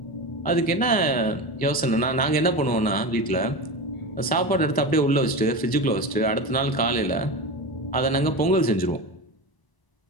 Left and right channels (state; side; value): late; right; 1.0 ms